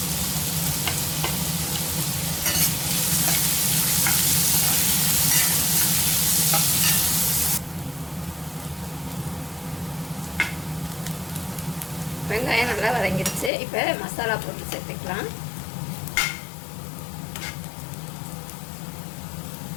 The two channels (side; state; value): right; drops out; at 13.5 s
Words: வெங்காயம் நல்லா வதங்கிடுச்சு. இப்போ மசாலா போட்டு சேர்த்துக்கலாம்.